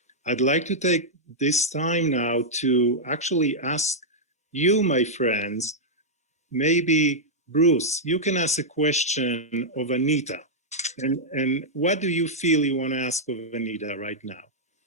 I'd like to take this time now to actually ask you, my friends, maybe Bruce, you can ask a question of Anita. And what do you feel you want to ask of Anita right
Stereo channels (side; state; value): both; normal; correlation -0.06